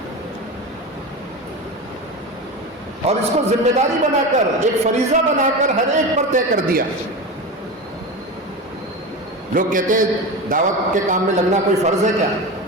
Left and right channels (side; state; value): both; normal; correlation 0.24